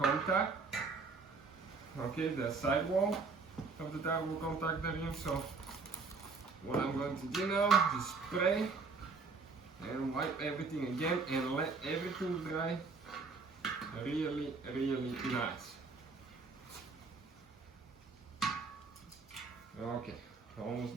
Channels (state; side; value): quieter; left; 4.4 dB